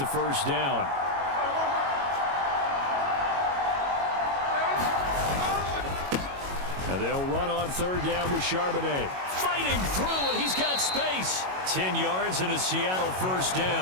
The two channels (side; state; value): left; late; 22 ms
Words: first down. Now they'll run on 3rd down with Charbonnet. Fighting through, and he's got space. 10 yards and a Seattle first